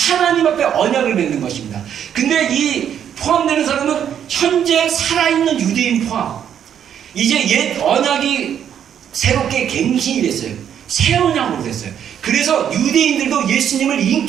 앞에 언약을 맺는 것입니다. 근데 이 포함되는 사람은 현재 살아있는 유대인 포함. 이제 옛 언약이 새롭게 갱신이 됐어요. 새 언약으로 됐어요. 그래서 유대인들도 예수님을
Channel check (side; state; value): left; quieter; 9.1 dB